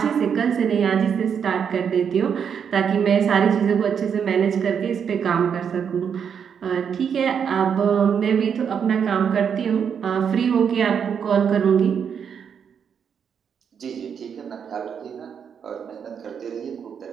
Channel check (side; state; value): left; quieter; 7.4 dB